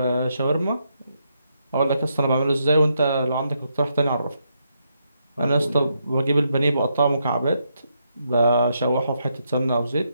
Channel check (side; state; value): both; inverted; correlation -0.79